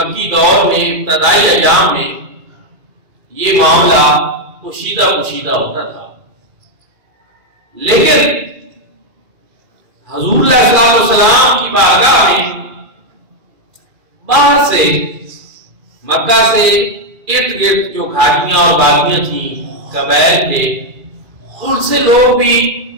دور میں ابتدائی ایام میں یہ معاملہ پوشیدہ ہوتا تھا، لیکن حضور علیہ السلام کی بارگاہ میں باہر سے مکہ سے ارد گرد جو گھاٹیاں اور وادیاں تھیں قبائل کے، ان سے لوگ بھی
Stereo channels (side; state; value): left; late; 2.4 ms